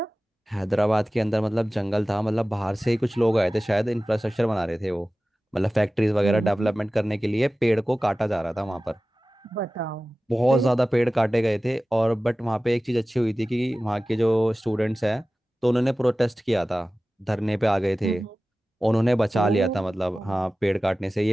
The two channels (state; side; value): normal; both; correlation 0.96